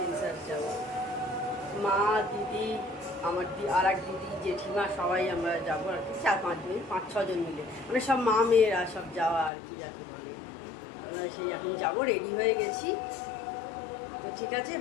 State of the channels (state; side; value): drops out; right; at 9.5 s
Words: যাবো। মা, দিদি, আমার আর এক দিদি, জেঠিমা, সবাই আমরা যাবো আর কি, 4-5 জন মিলে, মানে সব মা মেয়েরা সব যাওয়া আর কি যাকে বলে। আমরা সেই এখন যাবো, রেডি হয়ে গেছি। তো ঠিক আছে,